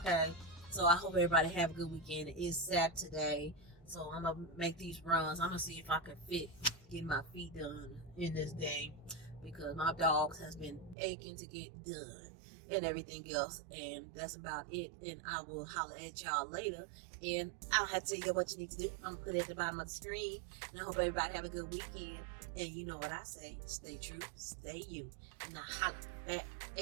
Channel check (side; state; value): left; drops out; at 11.0 s